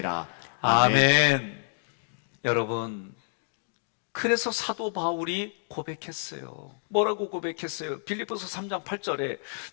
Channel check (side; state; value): right; silent; digital silence